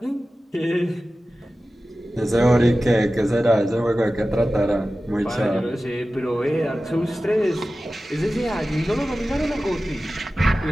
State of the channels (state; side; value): normal; both; correlation 0.95